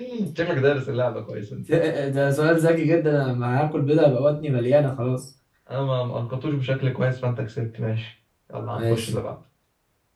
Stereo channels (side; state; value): both; identical; correlation 1.00